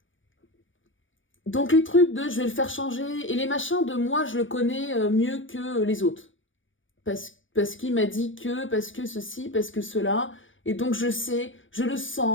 Donc les trucs de je vais le faire changer, et les machins de moi je le connais mieux que les autres. Parce qu'il m'a dit que, parce que ceci, parce que cela. Et donc je sais, je le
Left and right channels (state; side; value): late; right; 0.57 ms